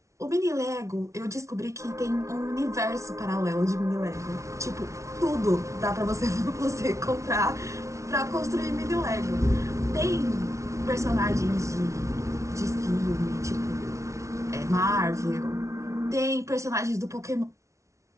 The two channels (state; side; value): late; left; 0.14 ms